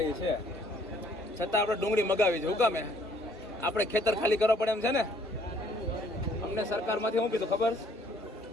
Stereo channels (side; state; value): both; normal; correlation 0.62